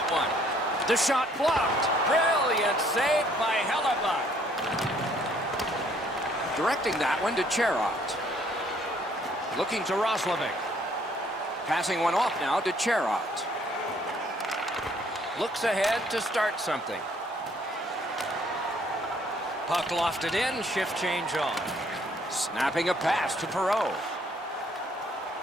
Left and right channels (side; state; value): both; normal; correlation 0.64